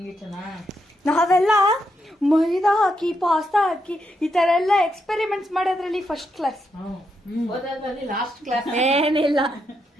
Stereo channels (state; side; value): normal; both; correlation 0.81